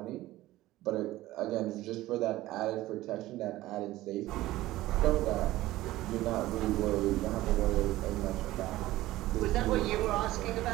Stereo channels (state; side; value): quieter; left; 16.6 dB